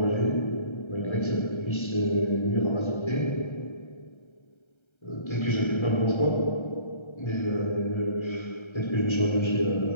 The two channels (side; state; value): right; late; 1.3 ms